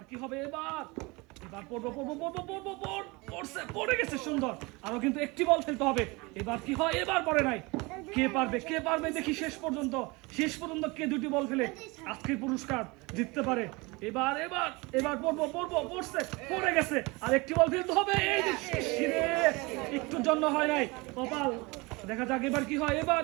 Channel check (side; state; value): left; quieter; 25.3 dB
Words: কি হবে, এবার এবার পড়ে গেছে সুন্দর। আরো কিন্তু একটি বল ফেলতে হবে। এবার কি হয়, এবার পড়ে নাই। কে পারবে দেখি শেষ পর্যন্ত কে দুটি বল ফেলে আজকের পুরস্কার জিততে পারে। এবার এবার এবার পড়ে গেছে। আর একটি বল ফেলতে হবে। এই যে একটুর জন্য হয় নাই, কপাল। দেখা যাক এবার কি হয়।